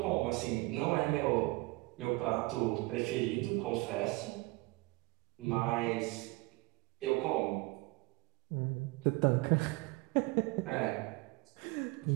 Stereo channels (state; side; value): quieter; left; 23.7 dB